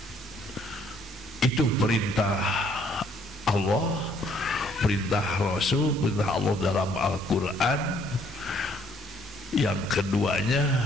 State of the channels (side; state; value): both; normal; correlation 0.64